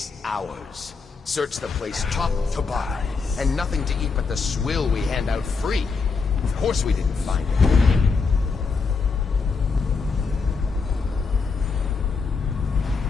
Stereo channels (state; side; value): quieter; right; 4.7 dB